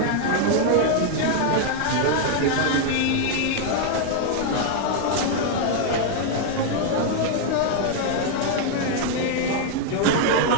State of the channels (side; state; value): both; different; correlation 0.00